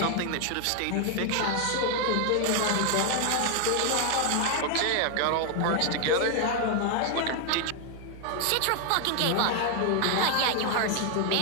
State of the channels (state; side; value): different; both; correlation 0.00